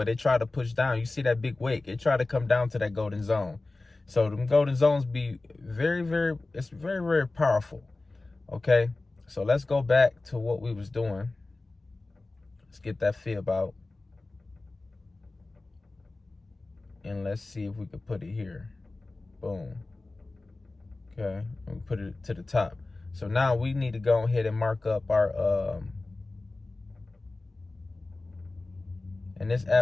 it tried to push down. You see that big wick? It tried to come down to that golden zone. So them golden zones be it's very, very powerful. Okay. So let's go back to what we was doing. Let's get that fib out. And let's see if we could put it here. Boom. Okay. And we put it to the top. So now we need to go ahead and mark up our, and this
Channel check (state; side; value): quieter; right; 3.2 dB